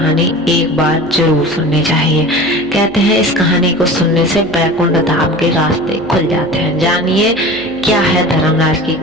एक बार जरूर सुननी चाहिए। कहते हैं इस कहानी को सुनने से बैकुंठ धाम के रास्ते खुल जाते हैं। जानिए क्या है धर्मराज की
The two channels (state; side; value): noise; right; hum, 23 dB below the sound